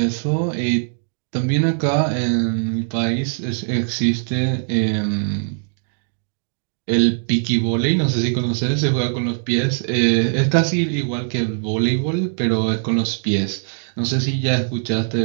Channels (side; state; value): left; silent; digital silence